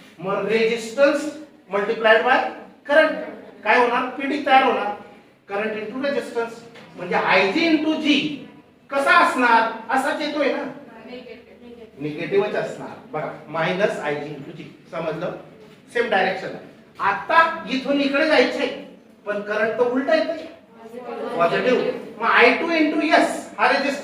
मग रेजिस्टन्स मल्टिप्लाइड बाय करंट काय होणार? PD तयार होणार. करंट इंटू रेजिस्टन्स म्हणजे IG इंटू G कसा असणार? असाच येतोय ना, निगेटिव्हच असणार. बघा मायनस IG इंटू G. समजलं? Same direction. आता इथून इकडे जायचंय पण करंट तर उलटा येतोय, पॉझिटिव्ह. मग I2 इंटू S. हा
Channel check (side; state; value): both; identical; correlation 1.00